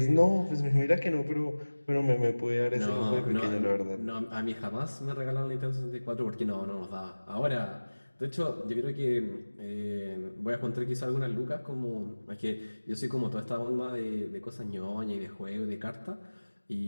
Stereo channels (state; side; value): inverted; both; correlation -1.00